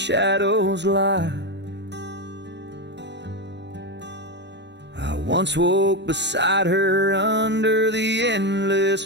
lie. I once woke beside her under the endless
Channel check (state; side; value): late; left; 0.51 ms